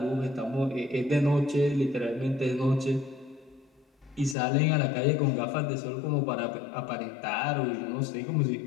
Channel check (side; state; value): right; drops out; at 4.4 s